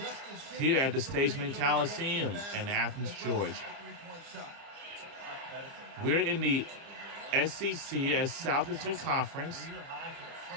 here at the Stageman Coliseum in Athens, Georgia. We're in the SEC as Southeastern Conference.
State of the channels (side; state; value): left; late; 30 ms